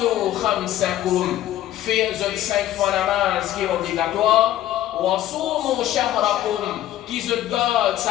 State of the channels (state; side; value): quieter; right; 13.2 dB